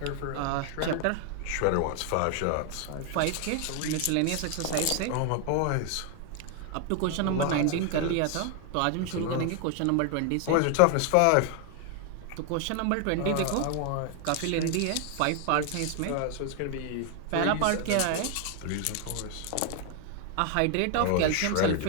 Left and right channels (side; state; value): both; different; correlation 0.00